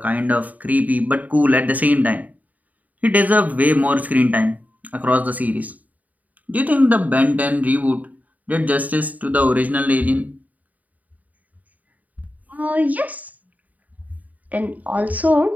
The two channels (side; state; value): left; late; 0.075 ms